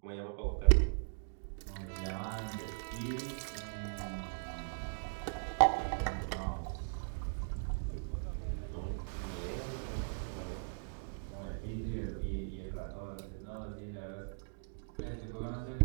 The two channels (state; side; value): silent; left; digital silence